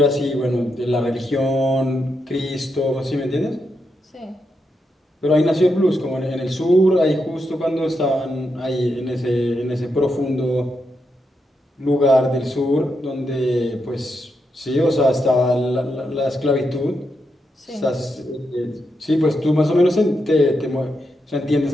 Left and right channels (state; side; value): normal; both; correlation 0.84